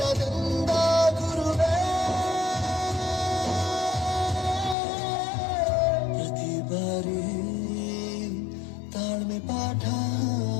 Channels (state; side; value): drops out; right; at 4.8 s